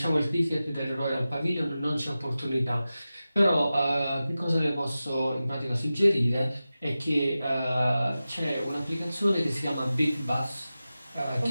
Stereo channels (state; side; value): inverted; both; correlation -0.94